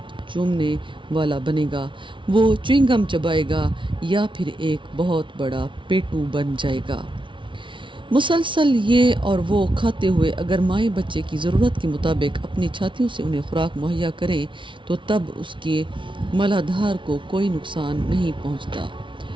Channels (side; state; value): left; late; 0.24 ms